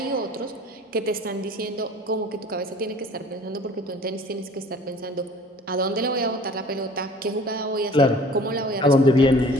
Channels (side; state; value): both; normal; correlation 0.48